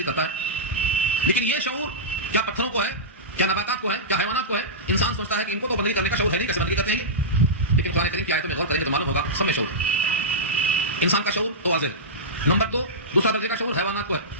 کرتا ہے، لیکن یہ شعور کیا پتھروں کو ہے، کیا نباتات کو ہے، کیا حیوانات کو ہے؟ انسان سوچتا ہے کہ ان کو تو بندگی کرنے کا شعور ہے نہیں، کیسے بندگی کرتے ہیں؟ لیکن قرآن کریم کی آیتوں میں غور کریں تو معلوم ہوگا سب میں شعور ہے۔ انسان کا شعور تو واضح ہے۔ نمبر 2 دوسرا درجے کا شعور حیوانات کو ہے،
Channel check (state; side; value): normal; both; correlation -0.14